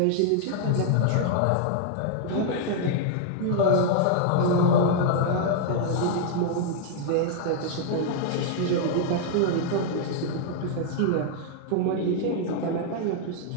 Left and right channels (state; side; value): different; both; correlation 0.00